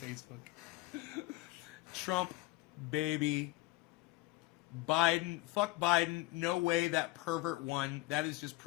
Facebook. Trump, baby. Biden, fuck Biden. No way that pervert won. That is just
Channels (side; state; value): right; quieter; 19.3 dB